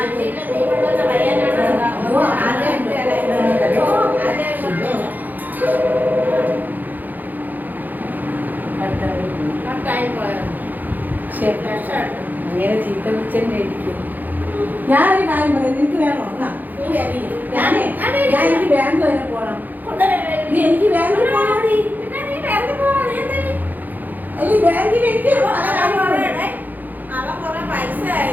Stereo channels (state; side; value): late; left; 0.084 ms